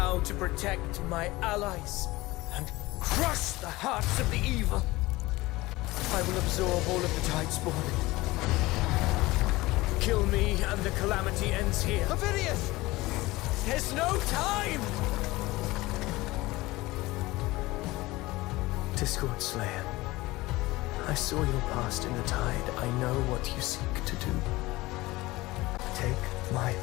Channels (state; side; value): quieter; right; 20.0 dB